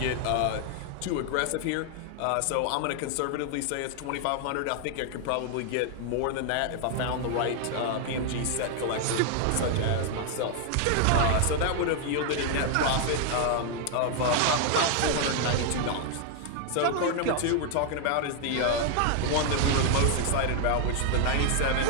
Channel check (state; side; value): different; both; correlation 0.00